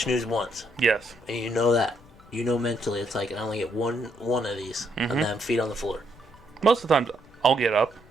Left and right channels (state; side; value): noise; left; rumble, 25 dB below the sound